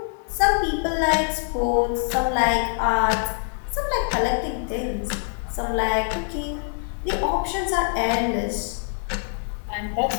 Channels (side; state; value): right; silent; 57 dB below the other